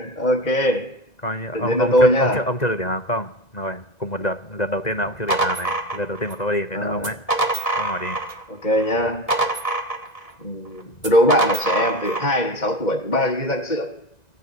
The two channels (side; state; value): right; late; 1.9 ms